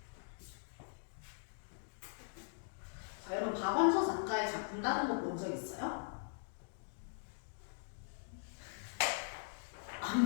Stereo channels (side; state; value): right; silent; digital silence